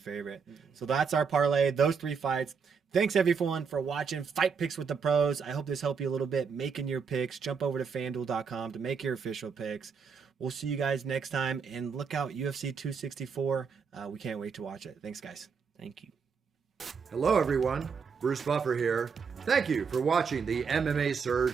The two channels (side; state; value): left; quieter; 5.9 dB